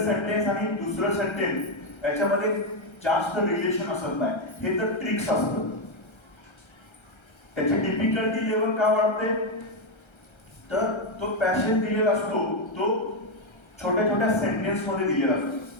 सेंटेन्स आणि दुसरं सेंटेन्स याच्यामध्ये जास्त रिलेशन असत नाही. हे तर ट्रिक्स असतं. त्याची डिफिकल्टी लेवल का वाढते, तर तो पॅसेज दिलेला असतो तो छोट्या छोट्या सेंटेन्स मध्ये दिलेला असतो,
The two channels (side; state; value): right; late; 1.3 ms